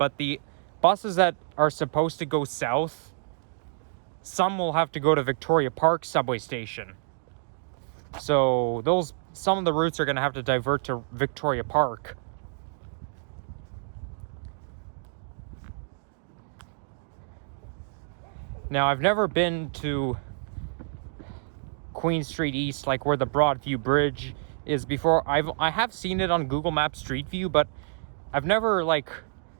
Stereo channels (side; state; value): left; silent; digital silence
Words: the buses that are supposed to go south some will have to go to Victoria Park subway station. So some of the routes are going to have to divert to Victoria Park. Now, I've never been to Queen Street East, like where the Broadview Bridge is before. I have seen it on Google Maps Street View, but I've never like